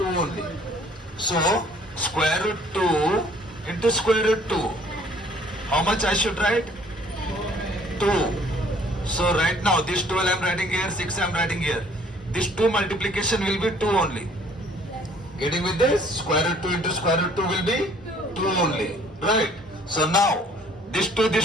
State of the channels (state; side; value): normal; both; correlation 0.58